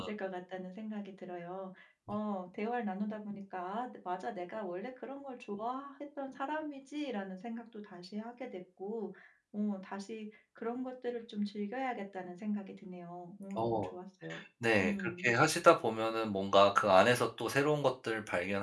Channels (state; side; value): identical; both; correlation 1.00